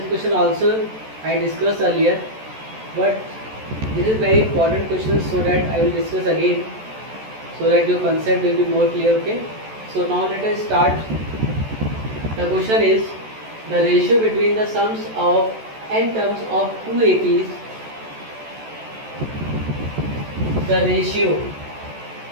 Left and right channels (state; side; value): late; left; 14 ms